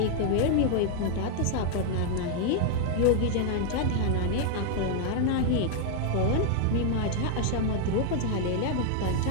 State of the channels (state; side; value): different; both; correlation 0.00